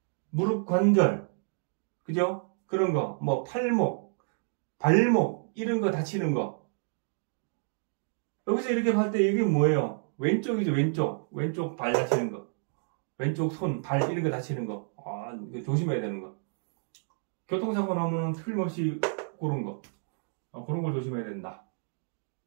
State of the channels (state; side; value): silent; left; digital silence